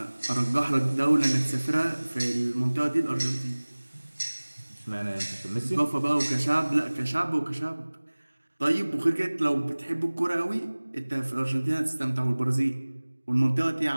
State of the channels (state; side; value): inverted; both; correlation -1.00